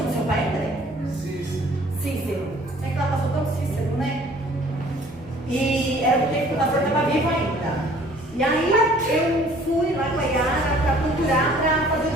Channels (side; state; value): both; normal; correlation 0.54